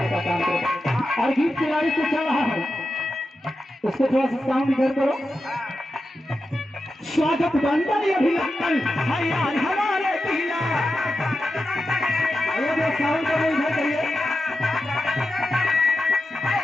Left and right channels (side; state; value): both; normal; correlation 0.90